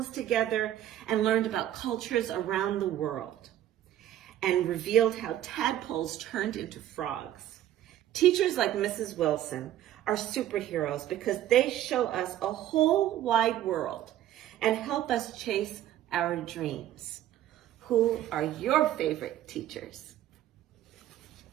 together and learned about cultures around the world. and revealed how tadpoles turned into frogs. Teachers like Mrs. Wilson are superheroes because they show us a whole wide world and help us chase our dreams. Who are your favorite teachers?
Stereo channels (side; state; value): left; quieter; 12.4 dB